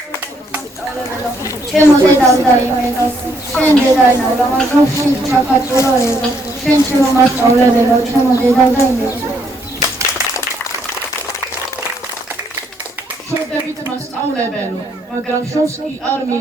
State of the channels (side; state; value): both; normal; correlation 0.71